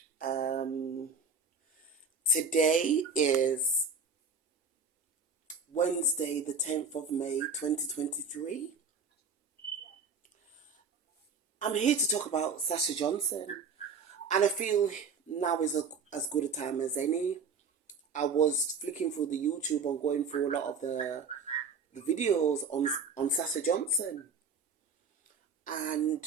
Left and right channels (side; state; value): left; quieter; 4.8 dB